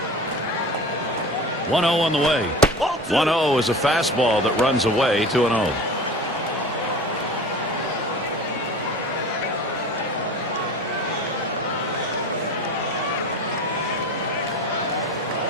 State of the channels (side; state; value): both; normal; correlation 0.35